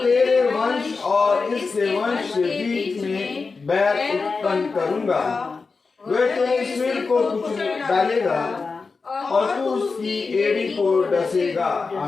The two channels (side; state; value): right; quieter; 4.4 dB